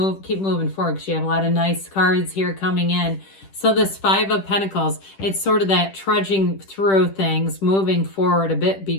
keep moving forward, because you have a lot of nice cards here coming in. So this Five of Pentacles, it's sort of that trudging through things, moving forward a bit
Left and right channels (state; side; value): late; right; 10 ms